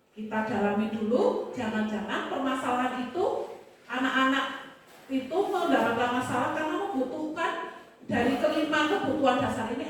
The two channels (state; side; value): identical; both; correlation 1.00